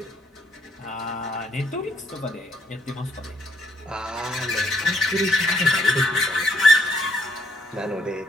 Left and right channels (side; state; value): both; normal; correlation 0.71